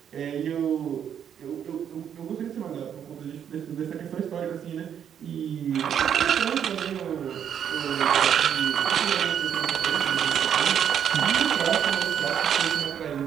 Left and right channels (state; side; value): quieter; left; 8.8 dB